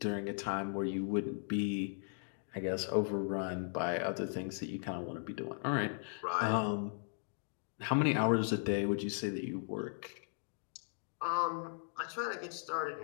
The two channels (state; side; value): silent; right; digital silence